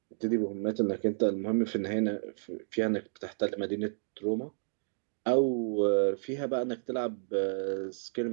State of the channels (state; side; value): silent; left; digital silence